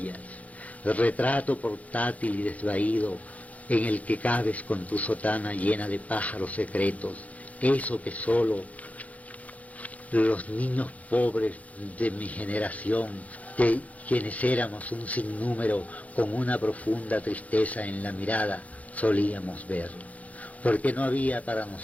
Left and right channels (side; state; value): right; late; 0.070 ms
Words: el retrato portátil y desvaído en el que cabes con tu sotana llena de pájaros secretos, eso que solo los niños pobres de mi generación, de quienes éramos un sinnúmero con una profunda tristeza en la mirada, solíamos ver. Porque no había para